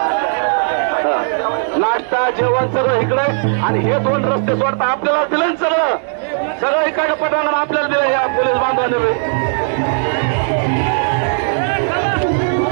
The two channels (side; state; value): left; silent; digital silence